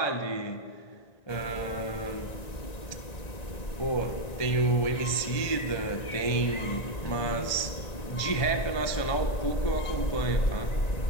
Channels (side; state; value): right; late; 1.9 ms